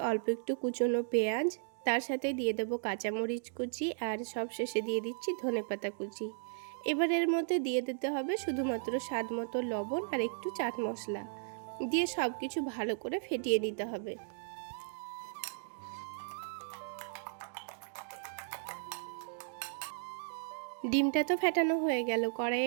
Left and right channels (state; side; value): silent; left; digital silence